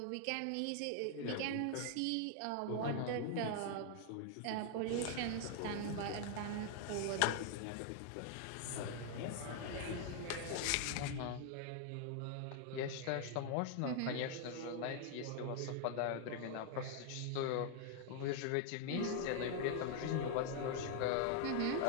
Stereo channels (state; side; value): different; both; correlation 0.00